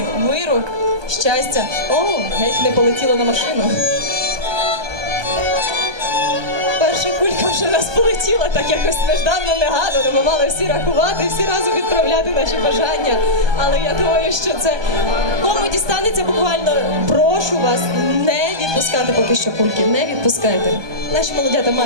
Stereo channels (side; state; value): left; late; 1.2 ms